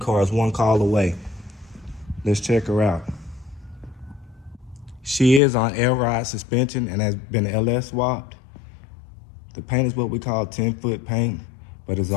is one call away. Let's check her out. She is on air ride suspension and has been LS swapped. The paint is what we call 10-foot paint, but is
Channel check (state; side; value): drops out; right; at 5.4 s